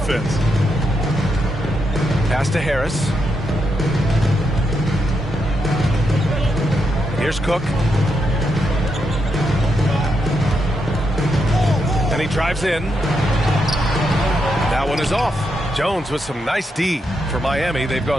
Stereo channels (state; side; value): normal; both; correlation 0.82